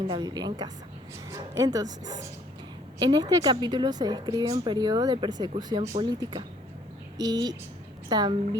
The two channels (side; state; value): both; normal; correlation 0.62